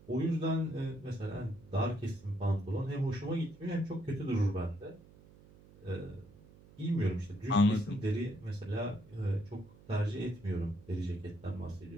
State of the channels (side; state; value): right; noise; hum, 23 dB below the sound